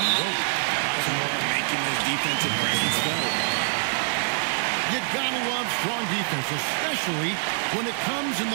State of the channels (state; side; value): silent; left; digital silence